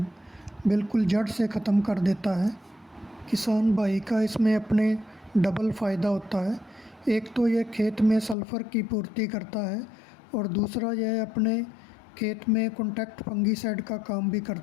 बिल्कुल जड़ से ख़त्म कर देता है। किसान भाई का इसमें अपने डबल फ़ायदा होता है। एक तो यह खेत में सल्फ़र की पूर्ति करता है और दूसरा यह अपने खेत में कॉन्टैक्ट फंगिसाइड का काम भी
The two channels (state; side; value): drops out; right; at 8.3 s